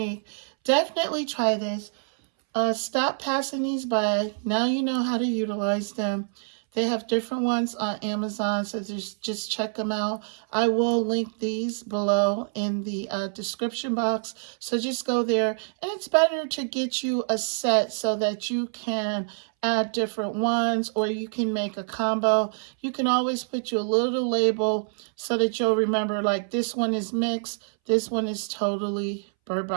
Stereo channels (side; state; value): left; silent; 61 dB below the other